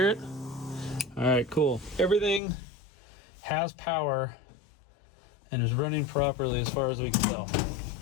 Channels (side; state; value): right; drops out; at 2.4 s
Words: it? All right, cool. Everything has power and is running properly as far as we can tell.